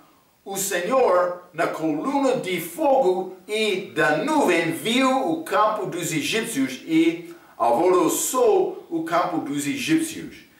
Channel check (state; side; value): identical; both; correlation 1.00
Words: o Senhor, na coluna de fogo e da nuvem, viu o campo dos egípcios e alvoroçou o campo dos egípcios.